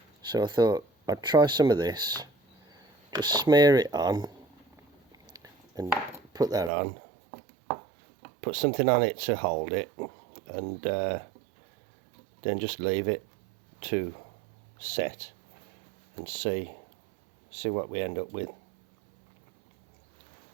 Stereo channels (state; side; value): drops out; left; at 6.7 s